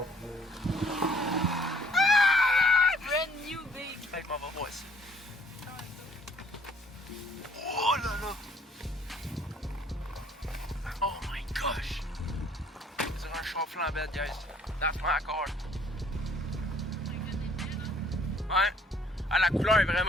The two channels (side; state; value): both; normal; correlation 0.60